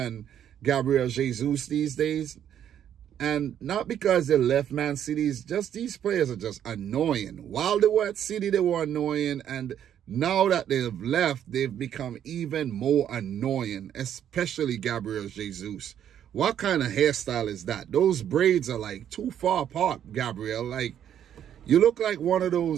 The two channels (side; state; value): left; quieter; 9.9 dB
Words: Gabriel Jesus these days, and not because they left Man City, just these players are just annoying. While they were at City, they were annoying, and now that they've left, they've become even more annoying, especially Gabriel Jesus. What kind of hairstyle is that? Those braids are like too far apart, Gabriel. Like, you look like one of